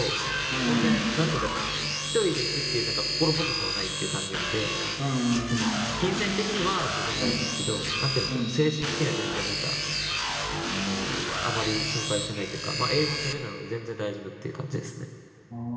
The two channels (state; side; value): identical; both; correlation 1.00